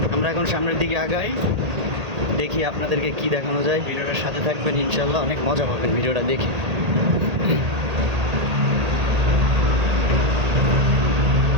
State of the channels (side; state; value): left; late; 1.8 ms